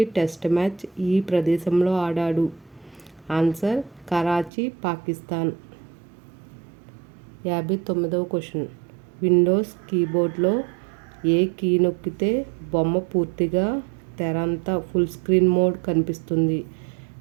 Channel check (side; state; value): left; drops out; at 4.5 s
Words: టెస్ట్ మ్యాచ్ ఈ ప్రదేశంలో ఆడాడు? ఆన్సర్ కరాచీ, పాకిస్తాన్. 59వ క్వశ్చన్. విండోస్ కీబోర్డ్లో ఏ కీ నొక్కితే బొమ్మ పూర్తిగా తెర అంతా ఫుల్ స్క్రీన్ మోడ్ కనిపిస్తుంది?